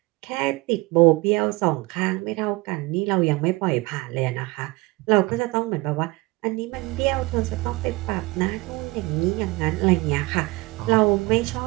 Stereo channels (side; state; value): left; quieter; 23.1 dB